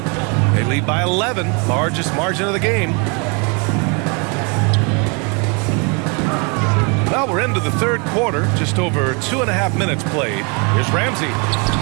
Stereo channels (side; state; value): left; quieter; 33.2 dB